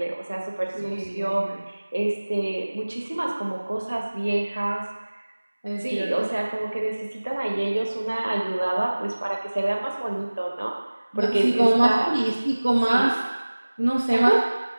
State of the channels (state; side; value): inverted; both; correlation -1.00